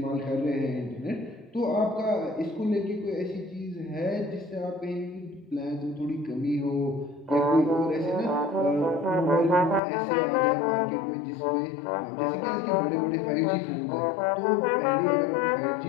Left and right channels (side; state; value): right; drops out; at 9.8 s